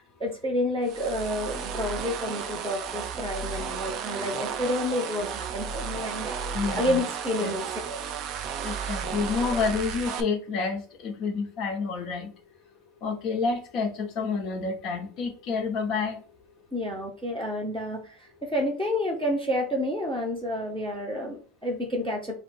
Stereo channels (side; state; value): both; normal; correlation 0.45